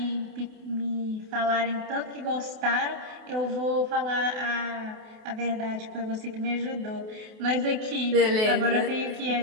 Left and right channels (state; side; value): late; left; 28 ms